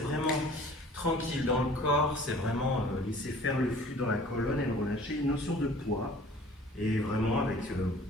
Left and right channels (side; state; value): both; normal; correlation 0.49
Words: tranquille dans le corps, c'est vraiment laisser faire le flux dans la colonne et le relâcher. Une notion de poids, et vraiment avec